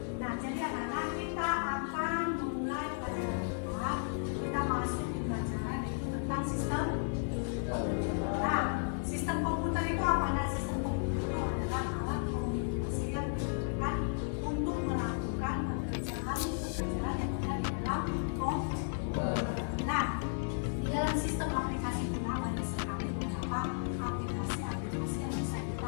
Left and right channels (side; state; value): right; silent; 55 dB below the other